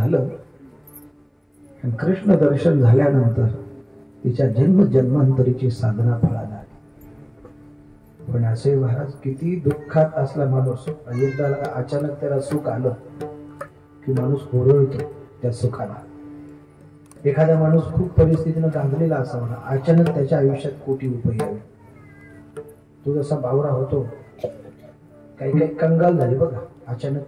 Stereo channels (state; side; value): identical; both; correlation 1.00